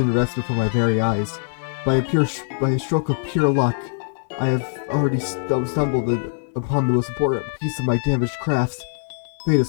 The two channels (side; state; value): right; silent; digital silence